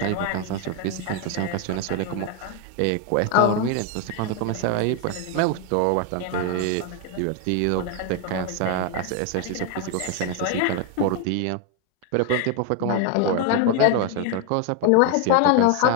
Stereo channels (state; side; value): different; both; correlation 0.01